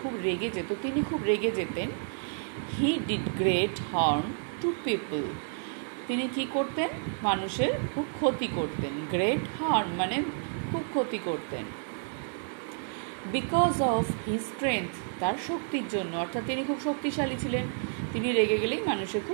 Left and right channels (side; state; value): left; silent; 58 dB below the other